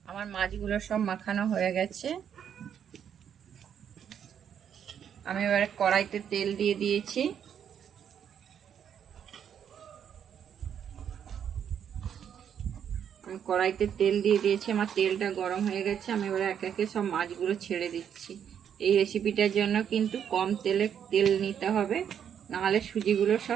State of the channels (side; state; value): left; quieter; 8.6 dB